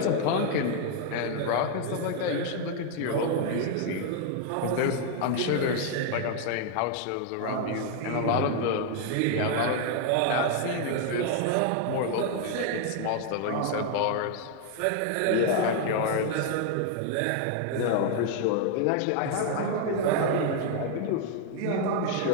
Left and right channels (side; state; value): both; different; correlation 0.00